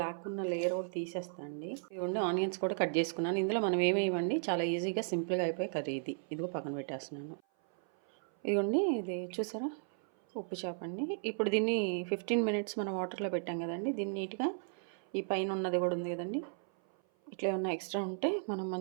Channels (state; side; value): silent; left; 54 dB below the other